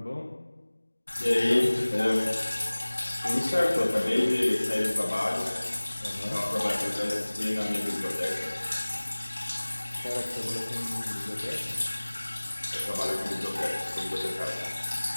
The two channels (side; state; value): both; inverted; correlation -1.00